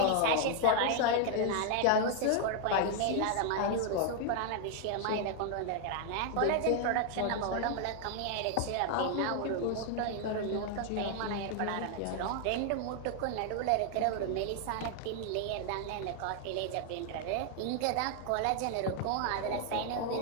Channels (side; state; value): both; different; correlation 0.00